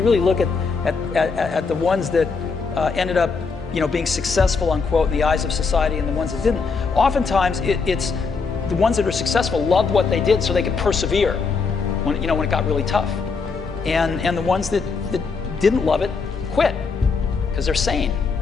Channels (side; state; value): right; quieter; 4.9 dB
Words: really look at the ones that ended up being successful, unquote, in the eyes of society, and the ones that didn't. Oftentimes, it's the ones that are successful loved what they did so they could persevere when it got really tough. And the ones that didn't love it quit because they're sane,